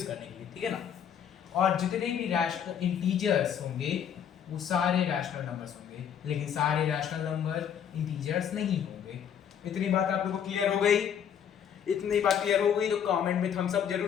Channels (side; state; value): right; quieter; 8.5 dB